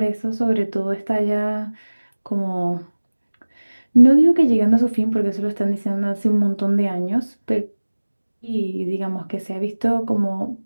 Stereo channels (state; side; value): inverted; both; correlation -1.00